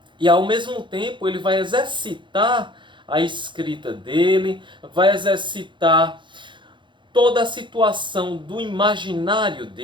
E ao mesmo tempo ele vai exercitar a escrita dele, vai exercitar toda a situação do imaginário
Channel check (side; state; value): left; late; 0.23 ms